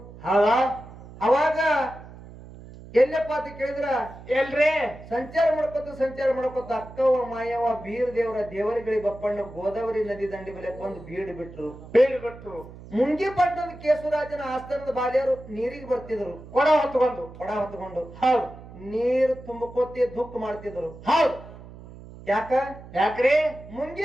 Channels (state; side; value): noise; right; hum, 17 dB below the sound